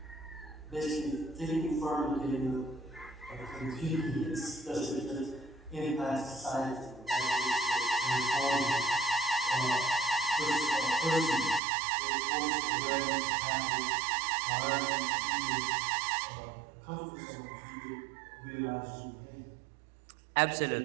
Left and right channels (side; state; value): left; drops out; at 11.6 s